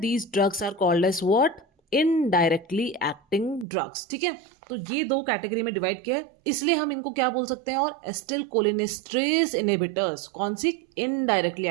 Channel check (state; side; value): drops out; left; at 3.7 s